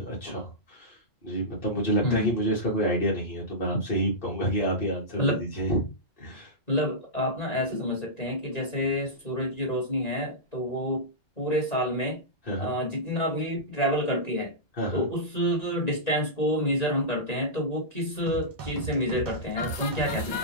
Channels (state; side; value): late; right; 1.9 ms